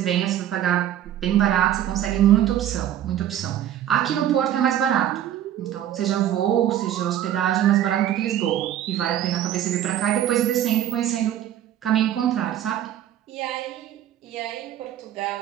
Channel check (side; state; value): left; quieter; 11.4 dB